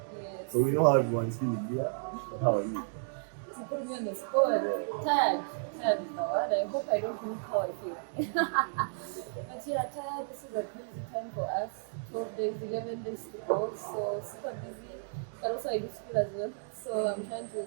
so we know how everyone's feeling here. But how are you? To put me on the spot. Tired is the word. I hope I don't look how I feel. But yeah, tired. This is a crazy time for us. 12 days, 11 days to go. So super busy. But also I do school as well. So I'm trying to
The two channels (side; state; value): left; silent; digital silence